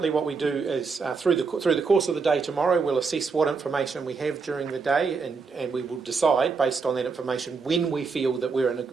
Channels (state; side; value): quieter; left; 4.8 dB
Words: what we do is through the course of the day tomorrow, we'll assess what information we have during the day, and we will decide based on that information when we feel that we're in